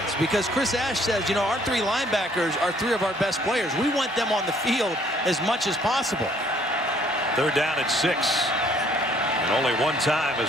because Chris Ash says, you know, our 3 linebackers are 3 of our best players. We want them on the field as much as possible. 3rd down and 6. And only 1 time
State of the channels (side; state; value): both; normal; correlation 0.62